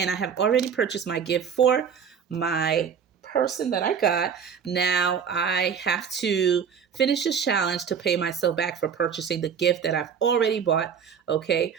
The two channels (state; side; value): quieter; left; 7.2 dB